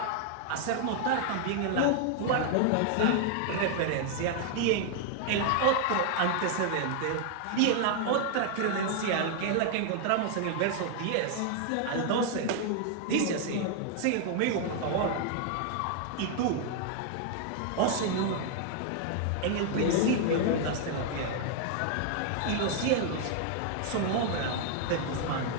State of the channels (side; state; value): both; different; correlation 0.00